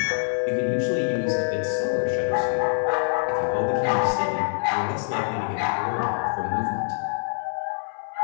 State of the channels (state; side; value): silent; right; 62 dB below the other